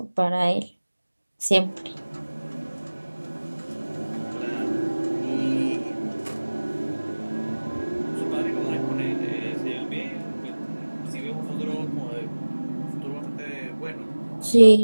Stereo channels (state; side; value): inverted; both; correlation -1.00